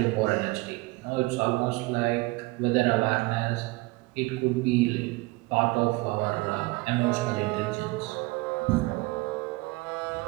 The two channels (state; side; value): quieter; left; 23.1 dB